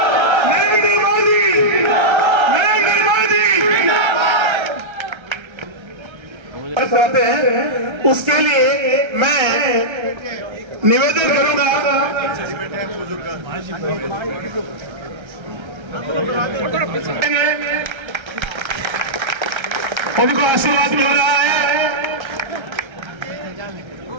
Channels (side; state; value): left; late; 1.3 ms